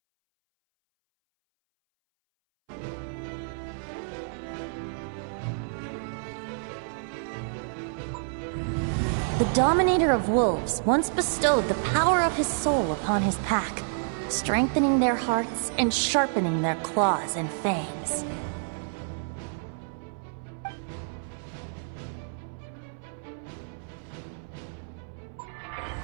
The Dominator of Wolves once bestowed the power of his soul upon his pack, strengthening their hearts and sharpening their claws and fangs.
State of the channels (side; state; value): left; silent; 59 dB below the other